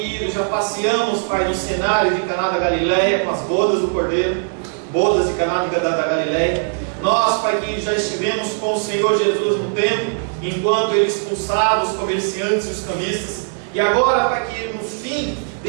já passeamos, Pai, no cenário de Caná da Galileia, com as bodas do Cordeiro, bodas de Caná da Galileia. Nós, Pai querido, já estivemos com o Senhor Jesus no templo, enquanto ele expulsava os comerciantes e os cambistas. E agora, Pai querido, no fim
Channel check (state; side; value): silent; left; digital silence